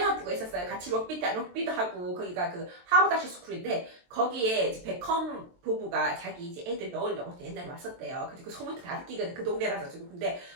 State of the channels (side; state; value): left; late; 23 ms